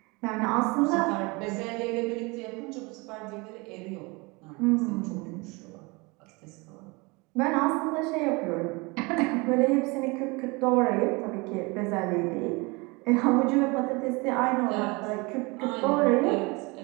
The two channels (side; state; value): left; quieter; 26.7 dB